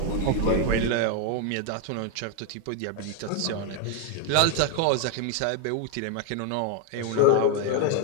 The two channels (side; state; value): both; different; correlation 0.01